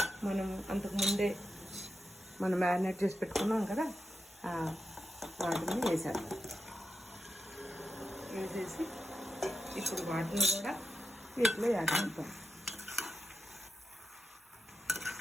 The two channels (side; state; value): both; normal; correlation 0.89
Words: మనం అంతకుముందే మనం మ్యారినేట్ చేసి పెట్టుకున్నాం కదా, వాటిని వేసేసి ఇప్పుడు వాటిని కూడా వీటిలో యాడ్ చేద్దాం.